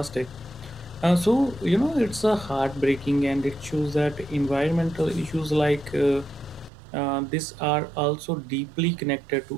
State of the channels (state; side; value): drops out; left; at 6.7 s